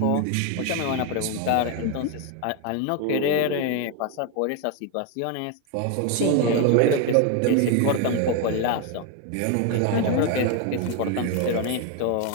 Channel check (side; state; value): both; different; correlation 0.01